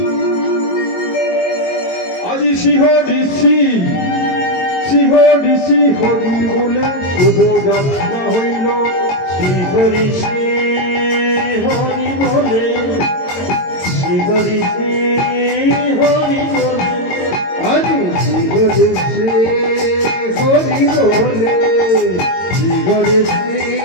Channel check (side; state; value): right; late; 22 ms